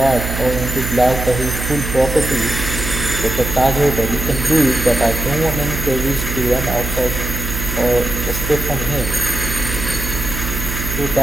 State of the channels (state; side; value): noise; right; hum, 5 dB below the sound